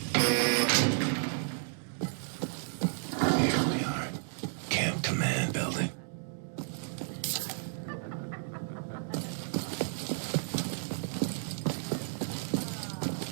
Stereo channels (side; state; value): left; silent; digital silence